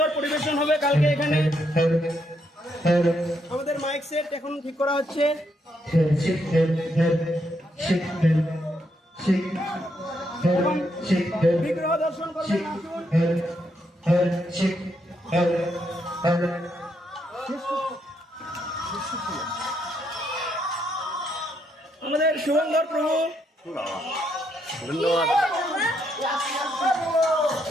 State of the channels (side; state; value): both; normal; correlation 0.77